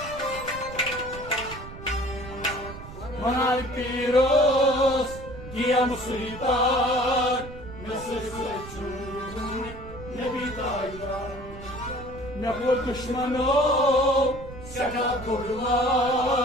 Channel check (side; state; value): right; noise; rumble, 14 dB below the sound